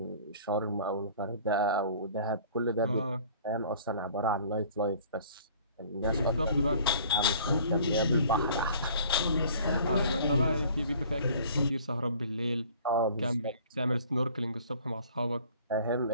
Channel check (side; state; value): both; inverted; correlation -0.51